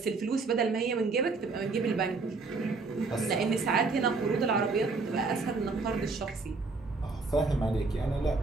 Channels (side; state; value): left; quieter; 4.0 dB